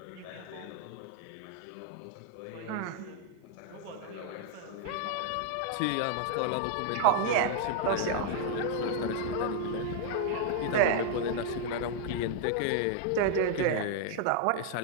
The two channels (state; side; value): different; both; correlation 0.00